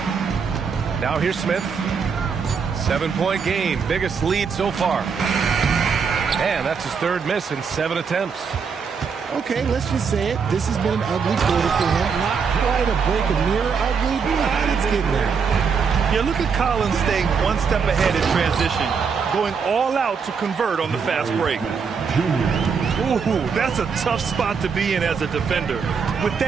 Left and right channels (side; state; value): left; quieter; 5.9 dB